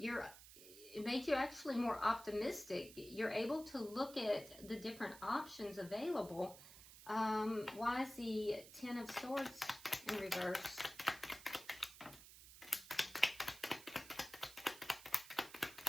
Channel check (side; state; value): right; noise; hiss, 17 dB below the sound